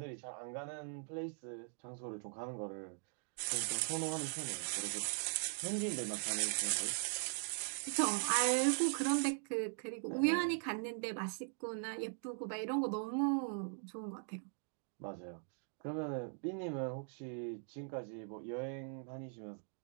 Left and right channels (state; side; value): silent; left; 51 dB below the other